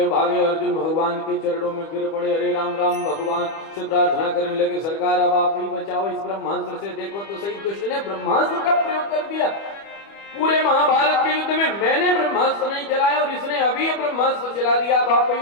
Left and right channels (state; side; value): late; right; 25 ms